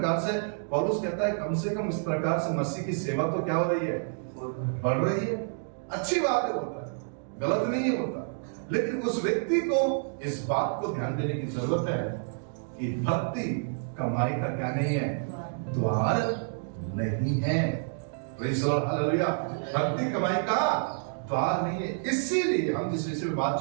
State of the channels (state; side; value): silent; left; digital silence